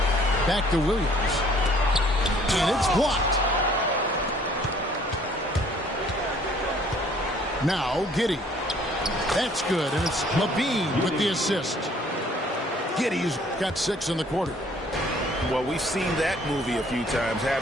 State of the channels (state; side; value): normal; both; correlation 0.58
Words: Back to Williams. And it's blocked. Now Giddey. That's good. And it's Levine with the assist. Giddey's got 6 in the quarter. Well, we've seen that movie a few times,